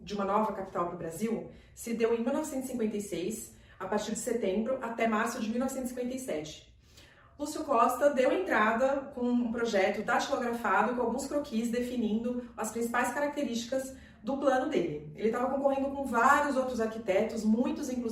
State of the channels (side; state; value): both; identical; correlation 1.00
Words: uma nova capital para o Brasil, se deu em 1956, a partir de setembro até março de 1957. Lúcio Costa deu entrada com um projeto datilografado com alguns croquis definindo as principais características do plano dele. Ele estava concorrendo com vários outros arquitetos, muitos